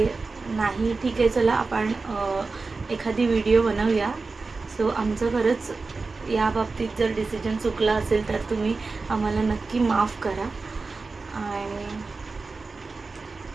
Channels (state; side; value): quieter; left; 4.0 dB